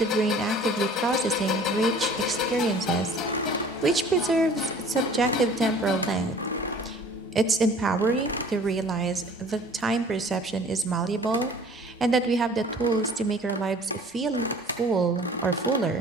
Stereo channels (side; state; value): both; normal; correlation 0.49